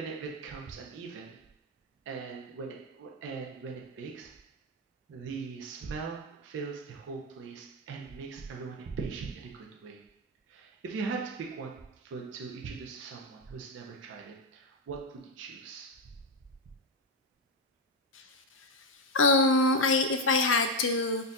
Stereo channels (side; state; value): both; normal; correlation 0.06